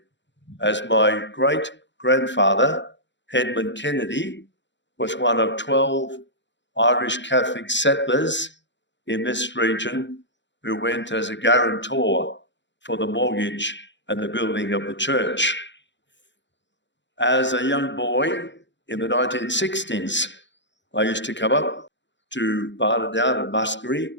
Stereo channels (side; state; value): right; late; 0.53 ms